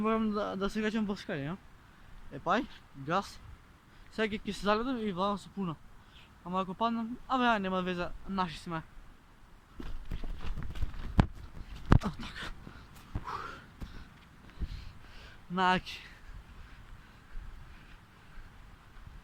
да се качам по скали, ја? Епај, газ. Сега ќе се заледам и владам со пуна. Ама ако паднам, абе, нема веза, наши сме. Така. Наки.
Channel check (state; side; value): identical; both; correlation 1.00